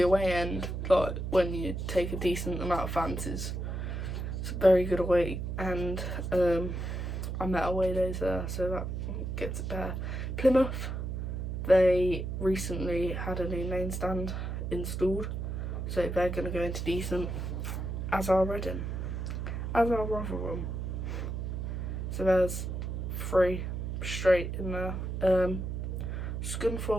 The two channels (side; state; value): right; noise; hum, 3 dB below the sound